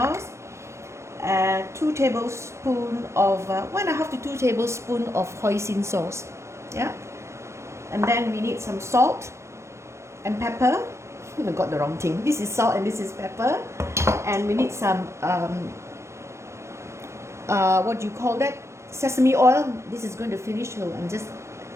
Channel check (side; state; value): left; late; 0.13 ms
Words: 2 tablespoons of 1.5 to 2 tablespoons of hoisin sauce. Yeah, and then we need some salt and pepper. I got the wrong thing. This is salt and this is pepper, and we need some what do you call that? Sesame oil. This is going to finish, so